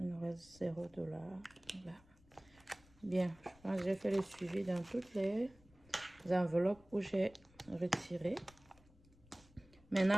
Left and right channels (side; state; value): left; noise; rumble, 27 dB below the sound